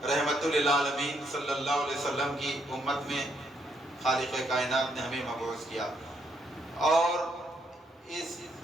رحمت للعالمین صلی اللہ علیہ وسلم کی امت میں خالق کائنات نے ہمیں مبعوث کیا، اور اس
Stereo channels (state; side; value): normal; both; correlation 0.75